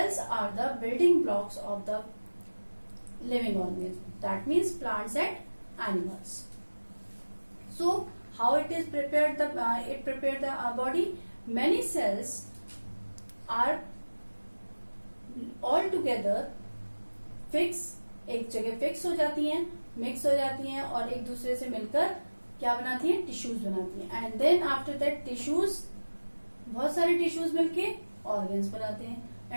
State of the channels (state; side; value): inverted; both; correlation -1.00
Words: are the building blocks of the living organism. That means plants and animals. So how it is prepared? It prepared the body. Many cells are all together fix, एक जगह fix हो जाती हैं, mix हो जाती हैं और एक दूसरे से मिलकर क्या बनाती हैं? टिश्यूज बनाती हैं. And then after that tissues, बहुत सारे टिश्यूज मिलके ऑर्गन्स बनाते हैं.